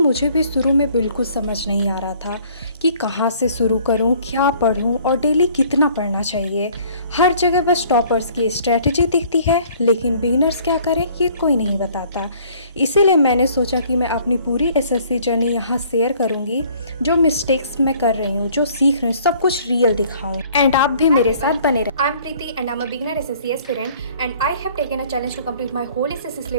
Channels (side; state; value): both; inverted; correlation -0.56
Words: भी शुरू में बिल्कुल समझ नहीं आ रहा था कि कहाँ से शुरू करूँ, क्या पढूँ और डेली कितना पढ़ना चाहिए। हर जगह बस टॉपर्स की स्ट्रेटजी दिखती है, लेकिन बिगिनर्स क्या करें ये कोई नहीं बताता। इसीलिए मैंने सोचा कि मैं अपनी पूरी एसएससी जर्नी यहाँ शेयर करूँगी। जो मिस्टेक्स मैं कर रही हूँ, जो सीख रही हूँ, सब कुछ रियल दिखाऊँ एंड आप भी मेरे साथ बने रहें। I'm Preeti and I'm a beginner SSC aspirant, and I have taken a challenge to complete my whole SSC